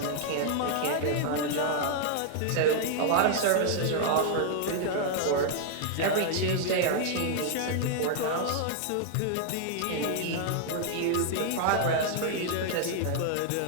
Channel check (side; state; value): both; different; correlation 0.00